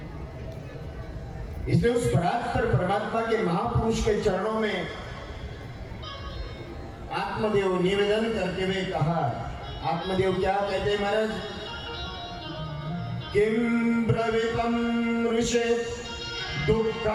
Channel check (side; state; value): both; identical; correlation 1.00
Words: इसलिए उस परात्पर परमात्मा के महापुरुष के चरणों में आत्मदेव निवेदन करते हुए कहा, आत्मदेव क्या कहते हैं महाराज? किम ब्रवीतम ऋषे